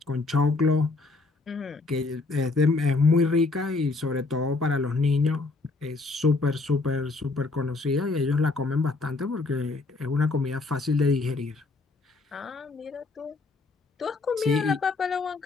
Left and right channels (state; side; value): quieter; right; 3.6 dB